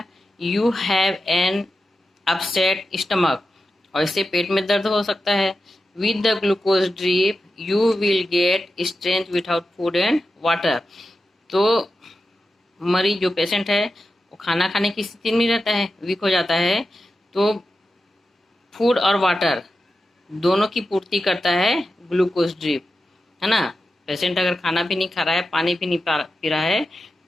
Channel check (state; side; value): normal; both; correlation 0.91